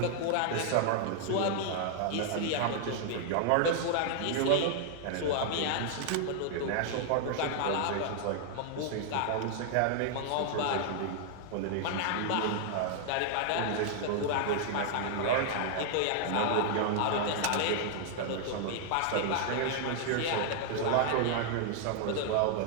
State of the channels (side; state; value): both; different; correlation 0.00